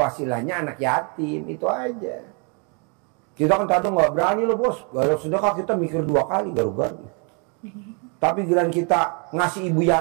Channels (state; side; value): quieter; left; 36.6 dB